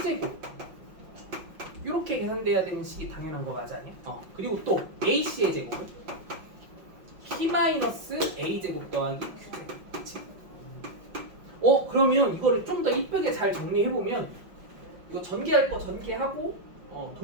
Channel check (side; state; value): left; late; 5.5 ms